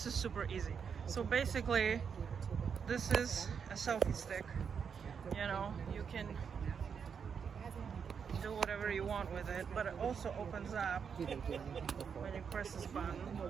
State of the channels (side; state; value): left; quieter; 6.7 dB